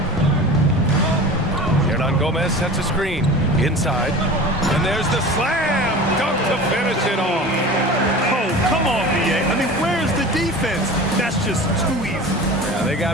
Hernan Gomez sets a screen inside, and there's the slam dunk to finish it off. Oh, come on, BA. I mean, where's the defense? That's just too easy. Yeah, they got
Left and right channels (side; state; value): both; normal; correlation 0.36